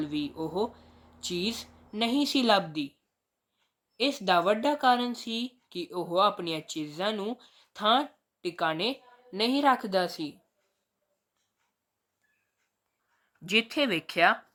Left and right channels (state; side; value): identical; both; correlation 1.00